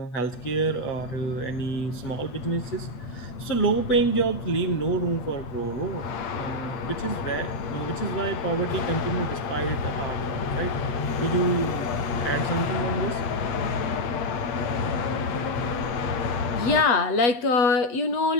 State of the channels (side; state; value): right; late; 8.1 ms